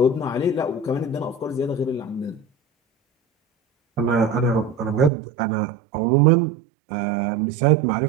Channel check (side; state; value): left; drops out; at 5.1 s